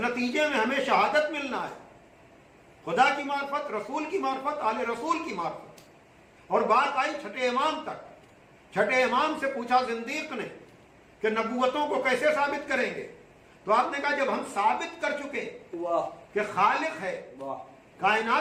میں ہمیں شہادت ملنا ہے، خدا کی معرفت، رسول کی معرفت، آل رسول کی معرفت۔ اور بات آئی چھٹے امام تک، چھٹے امام سے پوچھا زندیق نے کہ نبوتوں کو کیسے ثابت کریں گے؟ تو آپ نے کہا جب ہم ثابت کر چکے واہ کہ خالق ہے، واہ،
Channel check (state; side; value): identical; both; correlation 1.00